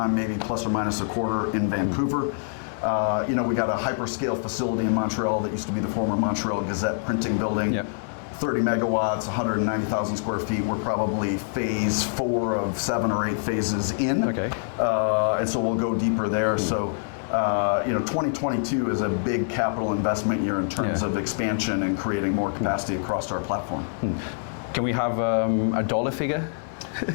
maybe plus or minus a quarter in Vancouver. We got a hyperscale facility in Montreal that used to be the former Montreal Gazette printing building. Yep. 30 megawatts, 190,000 square feet. We're probably phase 4 of 7 or 8 phases in. Okay. And so we'll go deeper there. So 2022 is a big capital investment year in terms of expansion and creating more capacity across our platform. Can we have a dollar figure?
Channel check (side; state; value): right; silent; digital silence